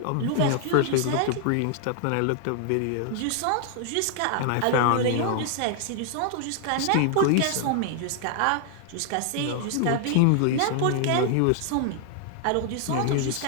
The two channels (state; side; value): different; both; correlation 0.00